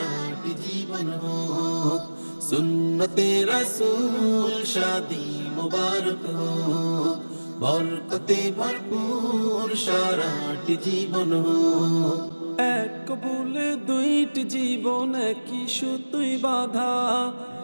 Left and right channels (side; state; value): both; inverted; correlation -1.00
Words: জীবন হোক। সুন্নতে রাসূল শাদি মুবারক হোক, বরকতে ভরপুর সারাটি জীবন হোক। এক কবুলে দুইটি জীবন একই সুতোয় বাঁধা,